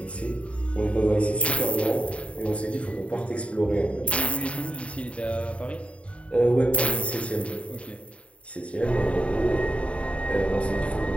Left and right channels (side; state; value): right; late; 0.062 ms